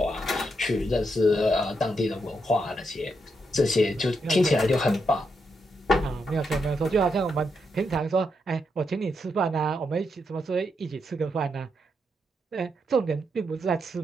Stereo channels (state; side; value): normal; both; correlation 0.81